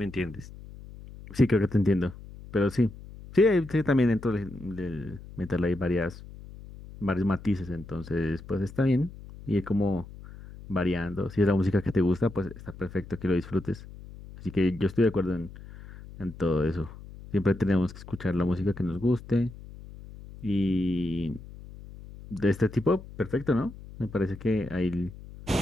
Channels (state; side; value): noise; left; hum, 16 dB below the sound